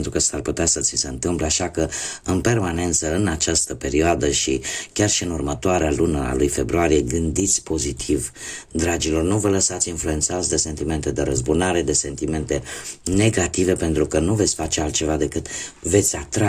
că s-ar putea să ți se întâmple, așa că în permanență în această perioadă și chiar și în următoarea lună a lui februarie, gândiți pozitiv, dragilor, nu vă lăsați influențați de sentimente de răzbunare, de sentimente negative, pentru că nu veți face altceva decât veți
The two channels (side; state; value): both; identical; correlation 1.00